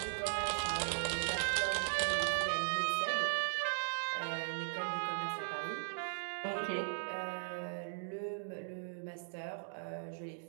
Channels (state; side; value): silent; left; digital silence